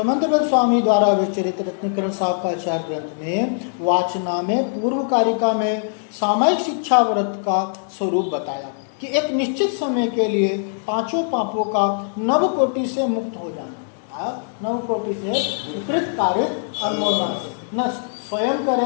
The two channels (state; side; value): silent; right; digital silence